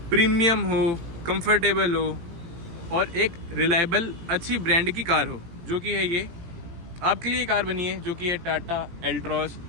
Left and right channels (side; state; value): left; late; 18 ms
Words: प्रीमियम हो, कंफर्टेबल हो और एक रिलायबल अच्छी ब्रांड की कार हो, जो कि है ये आपके लिए कार बनी है, जो कि है टाटा एल्ट्रॉस